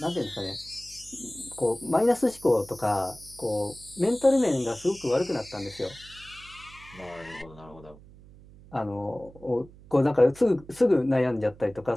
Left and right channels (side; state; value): right; noise; hum, 21 dB below the sound